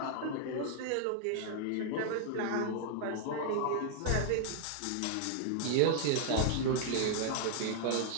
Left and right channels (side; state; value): both; different; correlation -0.01